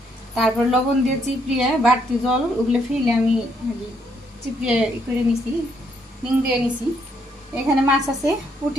তারপর লবণ দিয়ে চিপড়িয়ে বাড়তি জল ওগুলো ফেলে আমি চিপড়িয়ে করে নিছি, নিং দিয়ে নিছি। এখানে মাছ আছে,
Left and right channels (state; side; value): normal; both; correlation 0.72